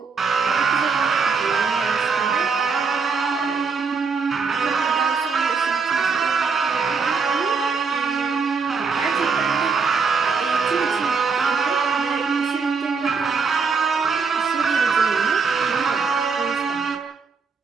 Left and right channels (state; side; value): quieter; left; 5.1 dB